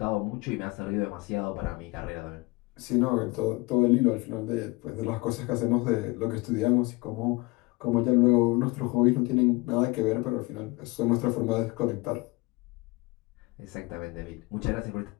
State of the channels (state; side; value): quieter; right; 24.2 dB